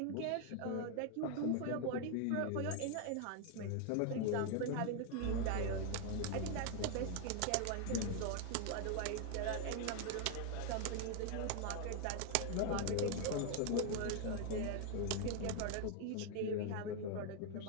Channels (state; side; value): different; both; correlation 0.00